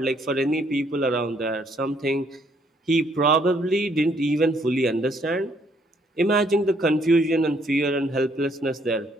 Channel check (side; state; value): both; normal; correlation 0.68